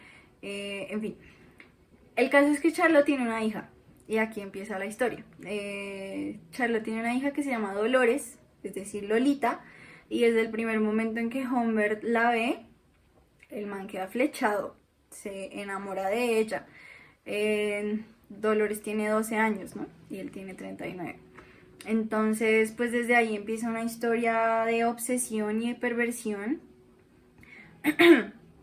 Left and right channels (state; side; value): identical; both; correlation 1.00